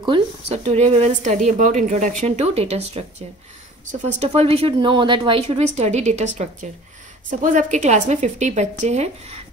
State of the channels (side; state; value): both; normal; correlation 0.46